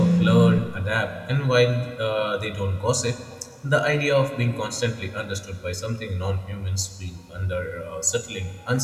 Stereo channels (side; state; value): both; identical; correlation 1.00